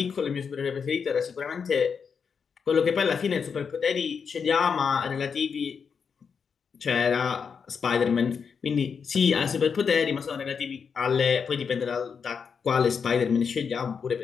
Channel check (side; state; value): right; quieter; 6.2 dB